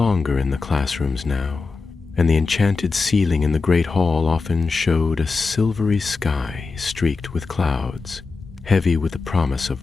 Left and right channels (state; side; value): quieter; right; 4.3 dB